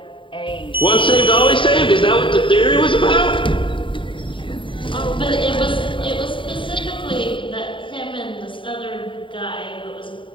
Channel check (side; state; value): right; late; 0.25 ms